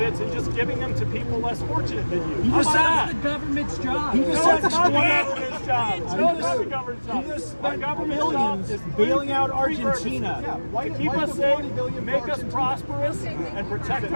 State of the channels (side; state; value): both; inverted; correlation -1.00